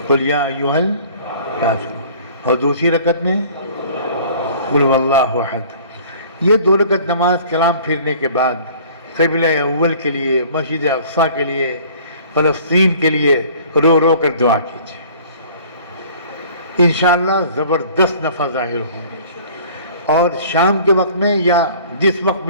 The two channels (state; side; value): inverted; both; correlation -0.50